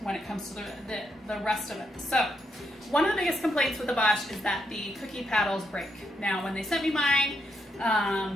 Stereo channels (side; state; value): both; normal; correlation 0.79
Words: it comes to the rest of it. So one of the biggest complaints with the Bosch is that the cookie paddles break. Now, when they sent me mine,